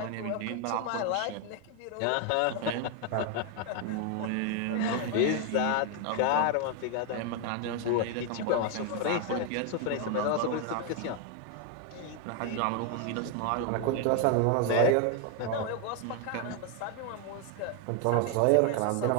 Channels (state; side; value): different; both; correlation 0.01